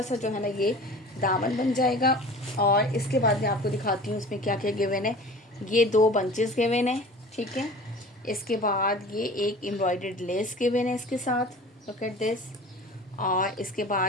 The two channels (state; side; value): normal; both; correlation 0.40